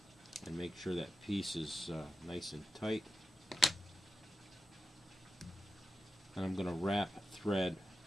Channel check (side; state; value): both; normal; correlation 0.92